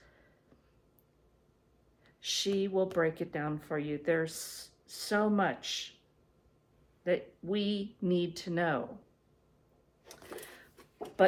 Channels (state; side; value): identical; both; correlation 1.00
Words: She will break it down for you. There's so much that we need to know.